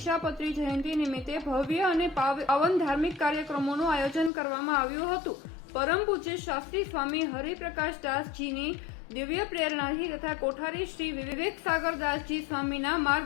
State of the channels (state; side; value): drops out; right; at 4.3 s